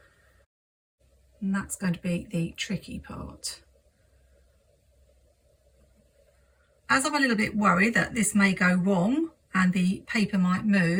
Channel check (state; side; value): identical; both; correlation 1.00